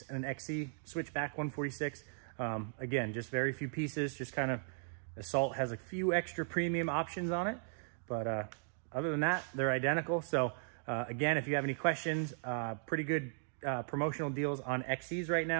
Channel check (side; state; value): left; silent; digital silence